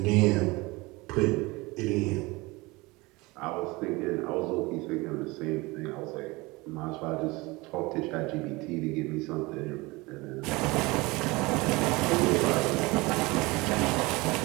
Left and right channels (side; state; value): left; quieter; 23.3 dB